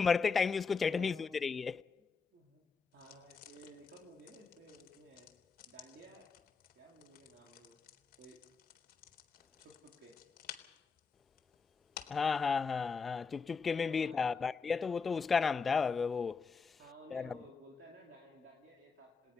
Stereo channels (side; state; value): right; quieter; 5.2 dB